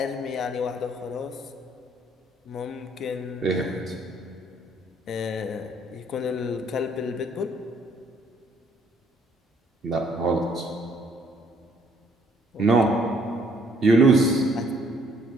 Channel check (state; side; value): normal; both; correlation 0.64